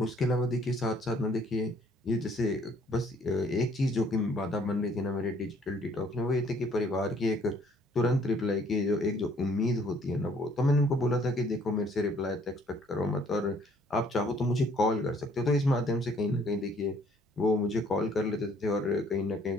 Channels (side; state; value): both; normal; correlation 0.61